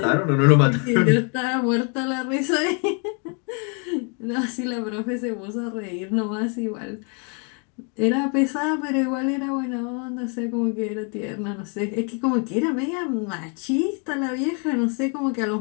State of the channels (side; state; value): right; quieter; 37.9 dB